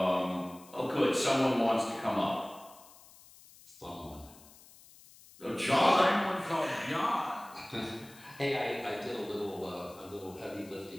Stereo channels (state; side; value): noise; left; hiss, 23 dB below the sound